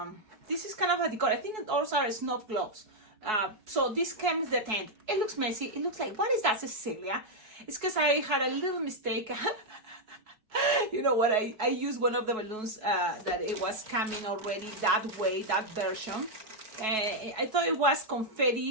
is kind of a decor. I think those are snow globes. So this comes the tent. It looks messy. It looks like, what is that, Cecilia? It's because I had a little mistake. You know what, I used one of the balloons that it was coming already that way, that version. I thought it was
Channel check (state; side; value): late; left; 4.6 ms